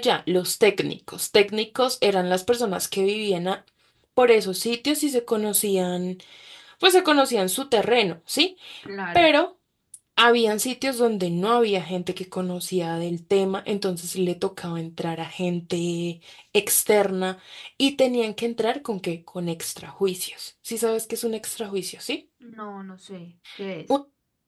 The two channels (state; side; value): identical; both; correlation 1.00